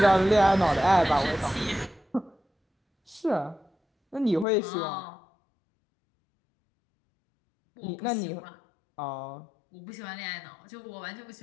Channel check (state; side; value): drops out; right; at 4.5 s